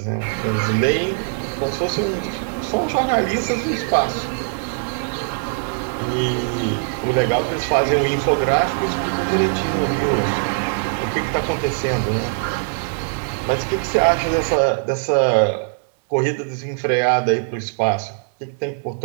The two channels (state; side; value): silent; left; digital silence